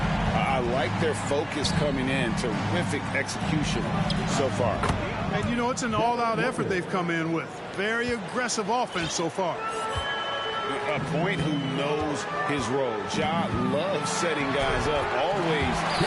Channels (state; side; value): identical; both; correlation 1.00